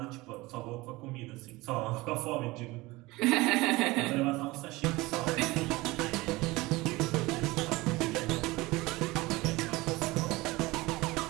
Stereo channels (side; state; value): left; quieter; 21.2 dB